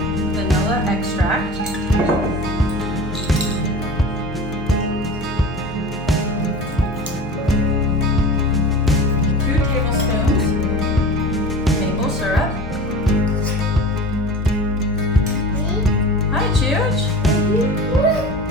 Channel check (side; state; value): both; normal; correlation 0.35